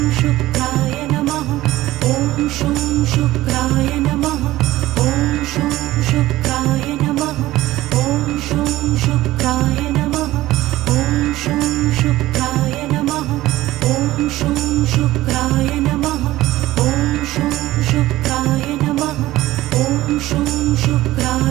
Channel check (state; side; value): quieter; left; 16.5 dB